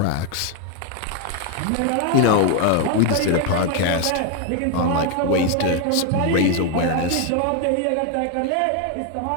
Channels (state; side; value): different; both; correlation 0.01